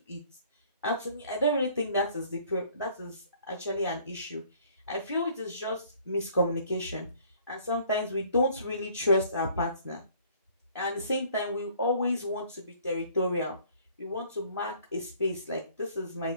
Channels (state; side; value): inverted; both; correlation -0.57